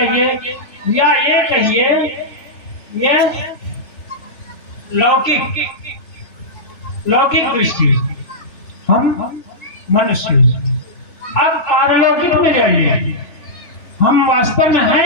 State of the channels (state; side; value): late; right; 3.5 ms